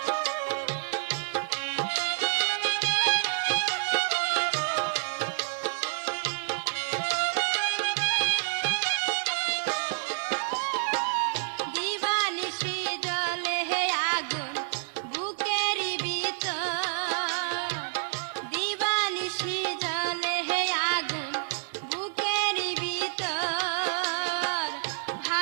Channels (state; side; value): silent; left; digital silence